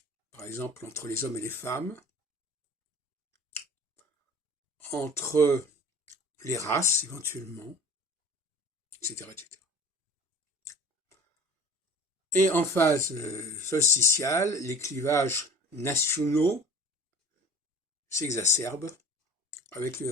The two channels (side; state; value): both; normal; correlation 0.42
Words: par exemple entre les hommes et les femmes, entre les races éventuellement, etc., etc. Et en phase solsticiale, les clivages nationaux s'exacerbent avec le